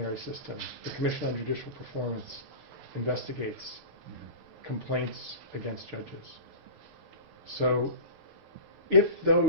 system. The Commission on Judicial Performance investigates complaints against judges. So if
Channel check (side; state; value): left; late; 6.6 ms